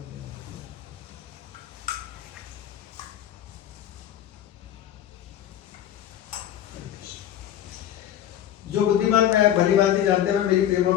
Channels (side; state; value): right; quieter; 11.1 dB